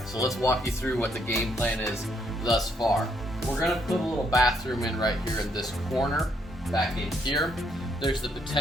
so let's walk you through what the game plan is thus far. We're going to put a little bathroom in right here in this corner, back in here. There's the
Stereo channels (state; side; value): normal; both; correlation 0.72